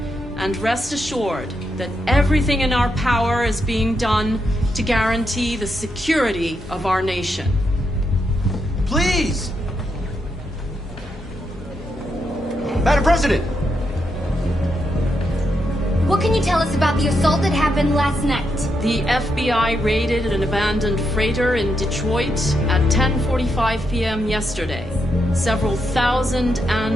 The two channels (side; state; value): both; normal; correlation 0.82